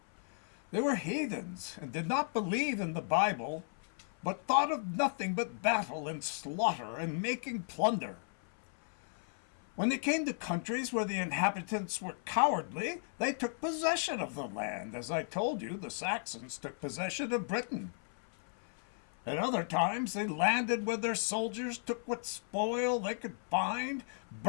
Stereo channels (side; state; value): right; silent; 54 dB below the other